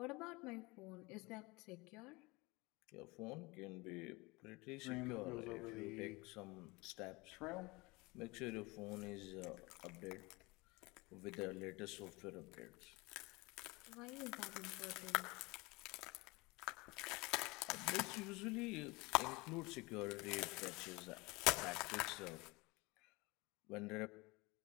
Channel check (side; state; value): right; quieter; 24.3 dB